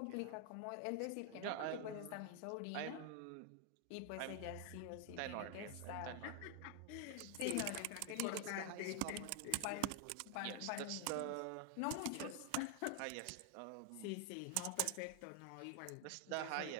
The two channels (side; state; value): both; different; correlation 0.00